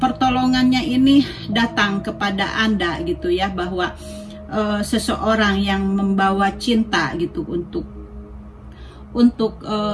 ini datang kepada Anda gitu ya, bahwa seseorang yang membawa cinta gitu untuk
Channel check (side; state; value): both; identical; correlation 1.00